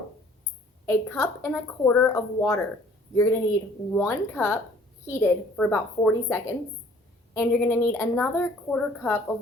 a cup and a quarter of water. You're going to need 1 cup heated for about 40 seconds, and you're going to need another quarter cup of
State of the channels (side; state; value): both; normal; correlation 0.56